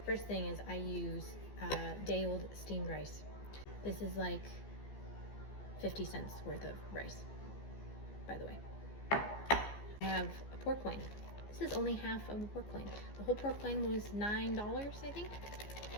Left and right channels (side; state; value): right; late; 14 ms